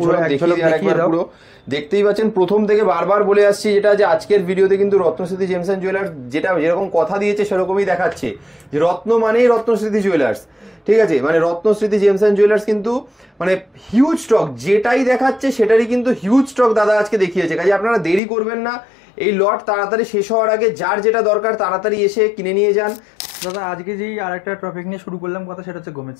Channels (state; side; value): drops out; right; at 18.2 s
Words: এক ঝলক দেখিয়ে দাও। দেখতেই পাচ্ছেন, প্রথম থেকে বারবার বলে আসছি যেটা, যে আজকের ভিডিওতে কিন্তু রত্নস্মৃতি জেমস এন্ড জুয়েলার্স যেটা যেরকম কথা দিয়েছে সেরকমই দেখাচ্ছে, যে রত্ন মানেই রত্নস্মৃতি জুয়েলার্স। ঠিক আছে, মানে রত্নস্মৃতি জেমস এন্ড জুয়েলার্স কিন্তু মানে হিউজ স্টক, যেটাই দেখাচ্ছে সেটারই কিন্তু হিউজ স্টক দাদা আজকে দেখিয়েছে। কাজে আপনারা দেরি করবেন না, এই লট তাড়াতাড়ি শেষ হওয়ার আগে যার যেটা দরকার তাড়াতাড়ি এসে কিনে নিয়ে যান। দাদা আজকে যেই আরেকটা টপিক নিয়ে শুরু করলাম কথা, সেটা হচ্ছে গোমেজ